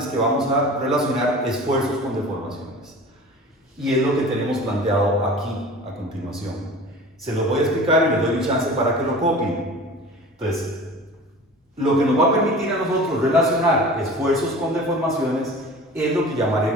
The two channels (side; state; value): both; normal; correlation 0.39